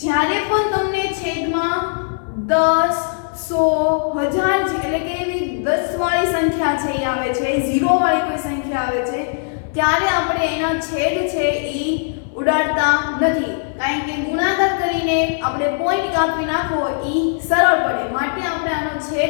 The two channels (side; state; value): right; silent; digital silence